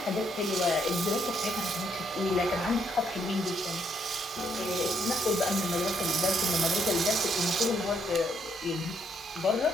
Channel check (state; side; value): normal; both; correlation 0.72